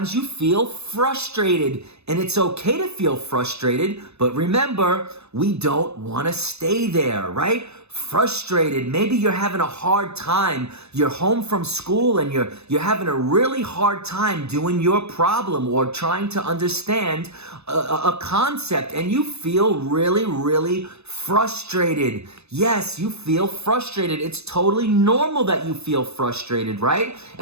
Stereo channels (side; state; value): left; late; 0.80 ms